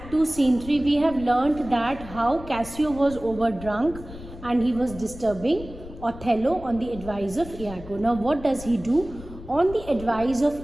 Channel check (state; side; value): noise; left; rumble, 14 dB below the sound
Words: 2, Scene 3, we have learnt that how Cassio was overdrunk and he was disturbing Othello on the advice of Iago. Now what does he do? On the advice